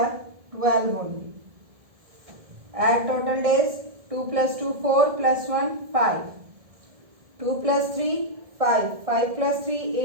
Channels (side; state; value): left; late; 1.7 ms